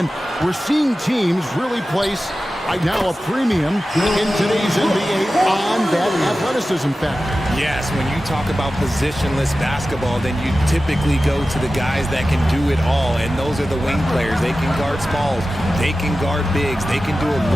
we're seeing teams really place right now a premium in today's NBA on that athleticism factor. Yes, when you talk about positionless basketball, then you typically go to the guys that can do it all, and those are the wing players. They can guard smalls, they can guard bigs, they can do a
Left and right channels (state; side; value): normal; both; correlation 0.94